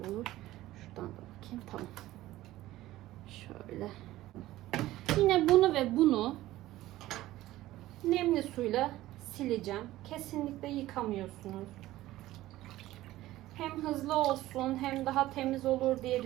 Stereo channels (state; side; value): quieter; left; 15.9 dB